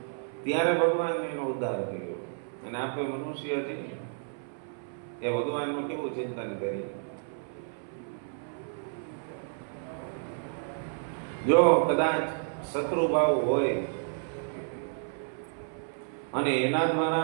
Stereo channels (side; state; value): left; silent; 57 dB below the other